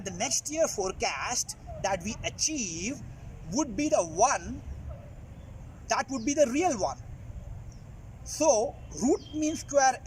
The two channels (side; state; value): both; identical; correlation 1.00